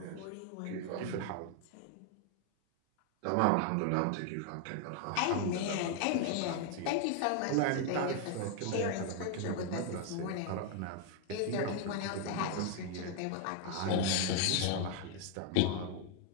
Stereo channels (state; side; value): different; both; correlation 0.00